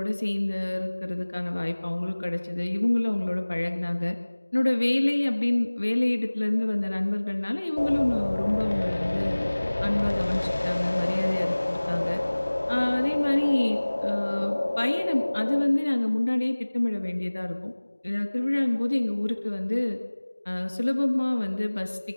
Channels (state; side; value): inverted; both; correlation -1.00